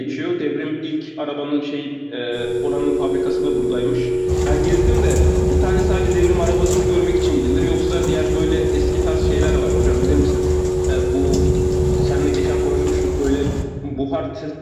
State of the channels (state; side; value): identical; both; correlation 1.00